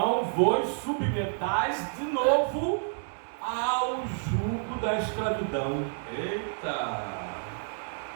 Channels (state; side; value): silent; left; 58 dB below the other